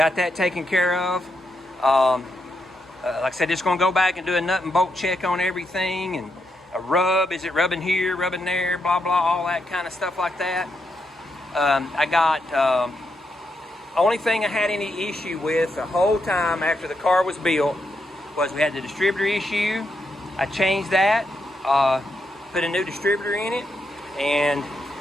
that taken care of. Like I said, just gonna go back and do a nut and bolt check on everything, and a rub, is it rubbing here, rubbing there, blah, blah, all that kind of stuff like that. I got, only thing I had any issue with the whole time after the car was built was we had the distributor issue. I changed that, put a new distributor in it, and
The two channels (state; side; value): normal; both; correlation 0.82